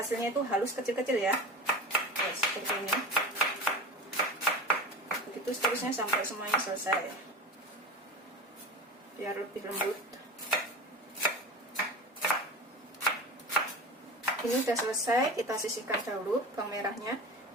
itu halus kecil-kecil ya. Oke, seperti ini. Begitu seterusnya sampai semuanya selesai, biar lebih lembut. Ini udah selesai, kita sisihkan dahulu bawang merahnya.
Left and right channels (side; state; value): both; normal; correlation 0.30